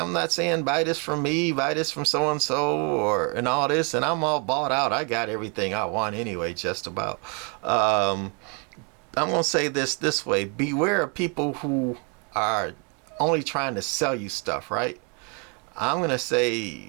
not saying buy this from me, buy this from so and so, and all this, and I'm all bought out. I got everything I want anyway, just about. I'm gonna say this way: beware of people who are only trying to sell you stuff, right? I'm gonna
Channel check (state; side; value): quieter; left; 35.6 dB